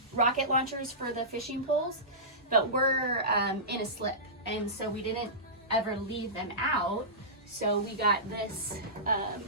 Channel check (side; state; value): both; normal; correlation -0.20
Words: rocket launchers for the fishing poles, but we're in a slip, and so we didn't ever leave them out. So we got this